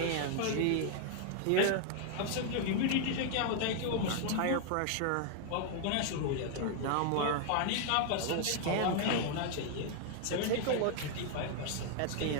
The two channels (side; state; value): both; different; correlation 0.00